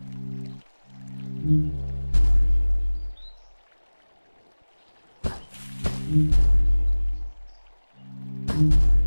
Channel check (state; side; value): inverted; both; correlation -1.00